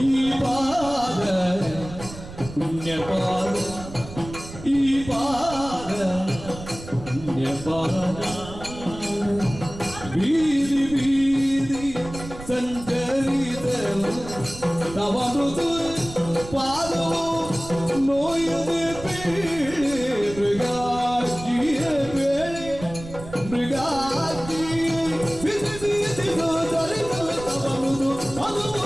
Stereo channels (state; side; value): noise; right; rumble, 13 dB below the sound